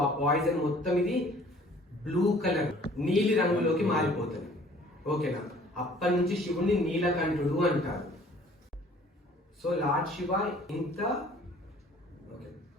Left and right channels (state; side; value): normal; both; correlation 0.53